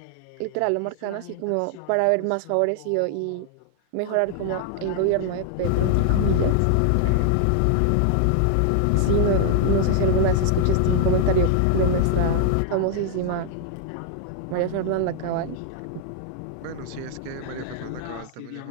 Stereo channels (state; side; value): different; both; correlation 0.00